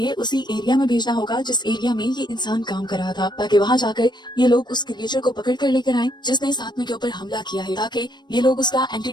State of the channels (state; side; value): late; right; 0.21 ms